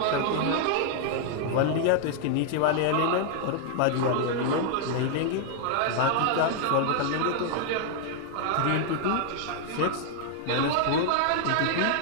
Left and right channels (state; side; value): different; both; correlation 0.00